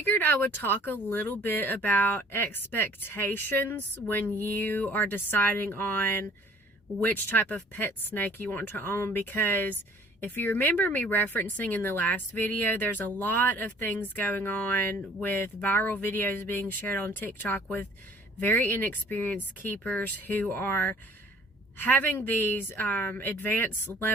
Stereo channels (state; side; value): normal; both; correlation 0.53